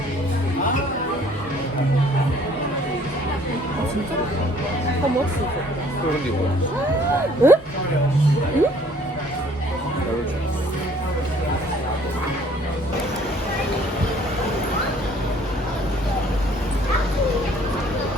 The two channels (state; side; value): normal; both; correlation 0.57